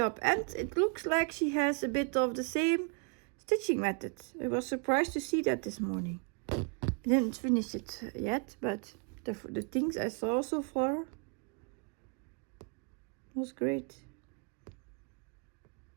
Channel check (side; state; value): left; quieter; 35.1 dB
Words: And it looks like she has a bit of the same stitching method. I was surprised to see that this morning. I didn't finish it yet, but the things I saw so far was great.